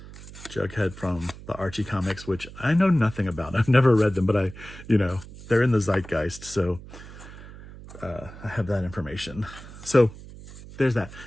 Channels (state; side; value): noise; right; hum, 16 dB below the sound